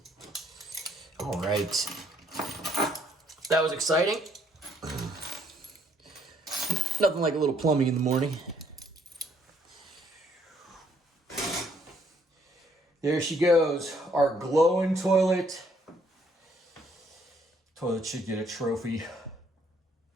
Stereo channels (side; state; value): both; normal; correlation 0.67